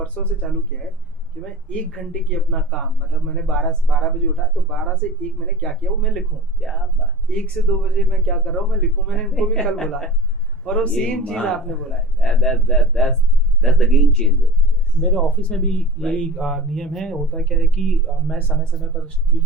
से चालू किया है कि मैं 1 घंटे की अपना काम, मतलब मैंने 12 बजे उठा, तो 12 से 1 मैंने क्या किया वो मैं लिखूं, क्या बात, 1 से 2 बजे मैं क्या कर रहा हूँ मैं लिखूं। मैंने इनको भी कल बोला और वो सेम चीज आपने बोला है। That's the game changer. मेरे ऑफिस में भी यही नियम है। होता क्या है कि मैं समय समय पर टीम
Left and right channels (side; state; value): both; normal; correlation 0.36